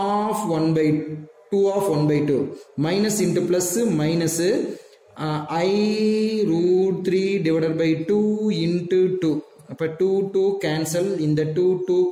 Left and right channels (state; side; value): identical; both; correlation 1.00